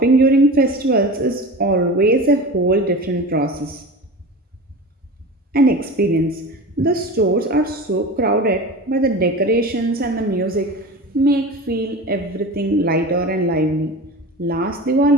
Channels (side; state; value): both; normal; correlation 0.32